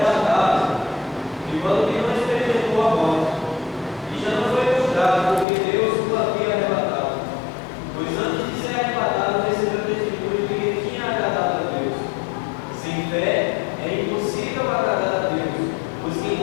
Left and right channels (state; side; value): drops out; right; at 5.5 s